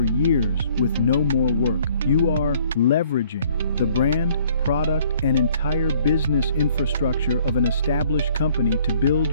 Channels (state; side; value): inverted; both; correlation -0.59